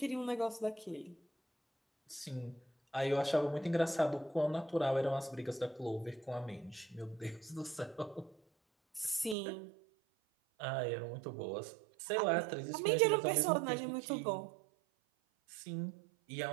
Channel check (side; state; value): left; drops out; at 9.3 s